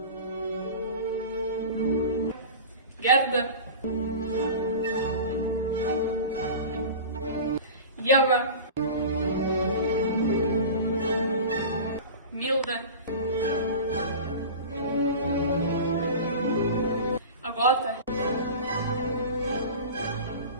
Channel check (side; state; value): both; inverted; correlation -0.33